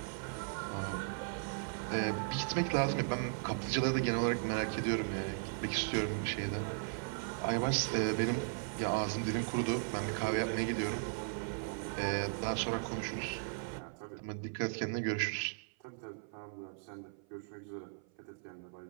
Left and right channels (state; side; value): silent; left; 53 dB below the other